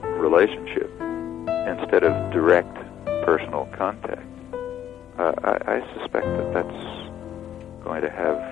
relationship instead of direct personal contact, I suspect that that's going to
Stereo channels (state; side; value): quieter; right; 10.4 dB